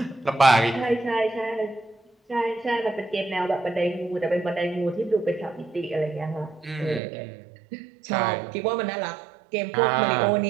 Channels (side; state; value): left; drops out; at 7.0 s